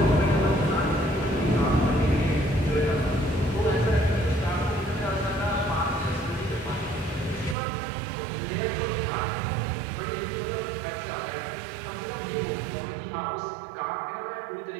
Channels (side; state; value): left; drops out; at 7.6 s